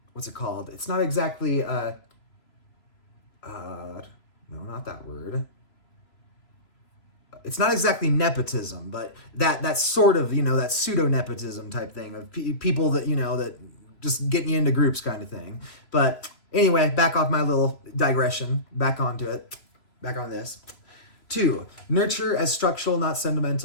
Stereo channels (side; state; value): right; late; 3.0 ms